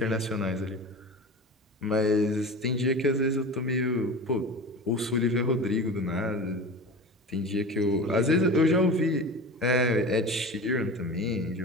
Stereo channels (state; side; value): normal; both; correlation 0.32